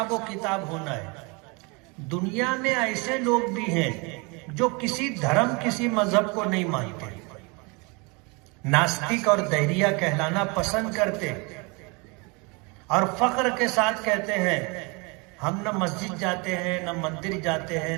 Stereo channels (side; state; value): left; quieter; 29.5 dB